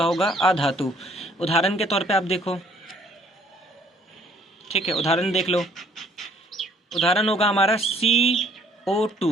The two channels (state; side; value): normal; both; correlation 0.61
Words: होगा, अधातु। उदाहरण के तौर पे आप देखो, ठीक है, उदाहरण देख लो। उदाहरण होगा हमारा